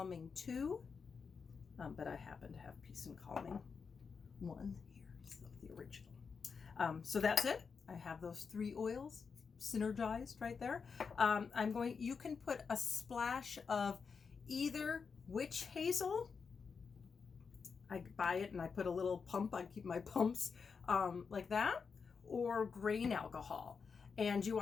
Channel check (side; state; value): right; quieter; 5.6 dB